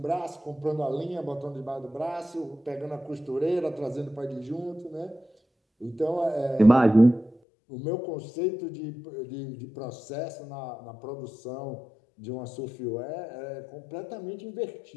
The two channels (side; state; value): right; drops out; at 7.4 s